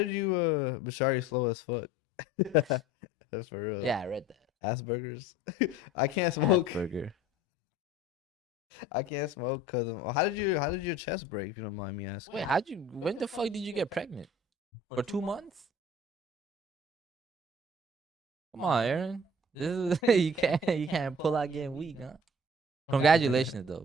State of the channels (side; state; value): both; normal; correlation 0.47